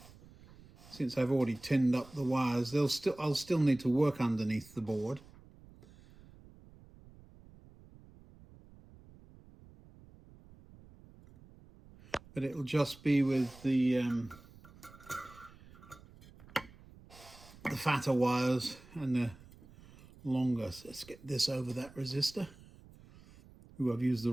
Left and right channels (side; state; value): right; noise; rumble, 22 dB below the sound